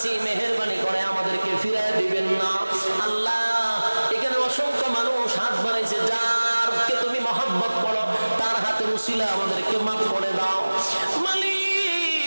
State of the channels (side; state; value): both; inverted; correlation -1.00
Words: মেহেরবানি করে আমাদেরকে ফিরায় দিবেন না আল্লাহ। এখানে অসংখ্য মানুষ হাত বানাইছে, যারকে তুমি মহব্বত করো তার হাতের উসিলা আমাদেরকে মাফ করে দাও